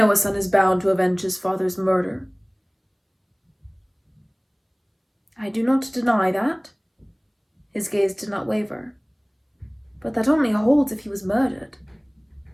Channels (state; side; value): identical; both; correlation 1.00